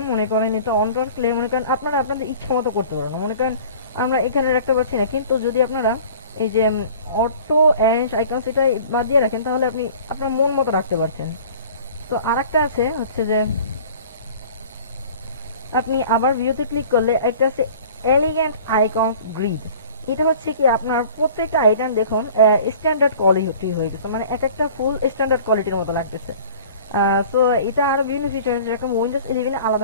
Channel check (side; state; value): both; inverted; correlation -0.46